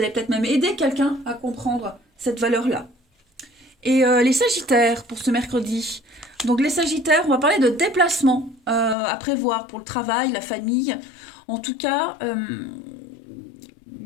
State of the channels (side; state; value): right; drops out; at 9.0 s